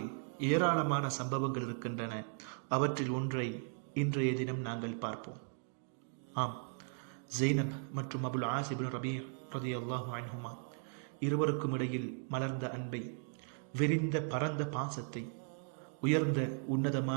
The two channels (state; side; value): silent; left; 53 dB below the other